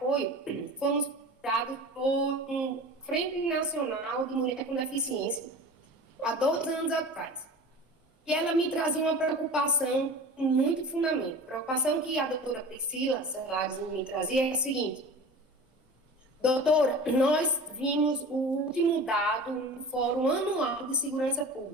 fomos dados por um Frente Nacional de Mulher com Deficiência há 2 anos atrás. E ela me trazia uma preocupação com muito fundamento. A preocupação que a doutora Priscila Celares me trazia é a seguinte: doutora, nós vimos o último dado no Fórum Anual de Segurança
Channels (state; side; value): normal; both; correlation 0.36